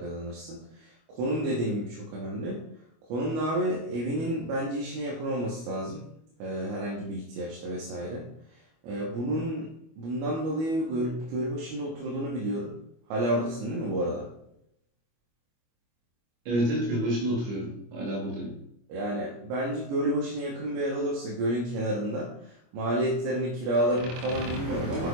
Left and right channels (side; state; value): left; late; 25 ms